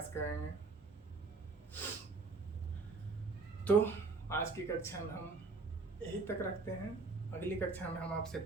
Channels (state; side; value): quieter; left; 4.0 dB